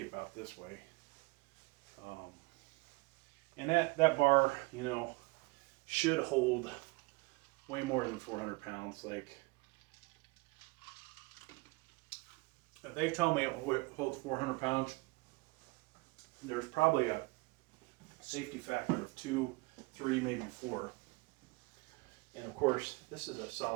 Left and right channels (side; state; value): left; quieter; 25.7 dB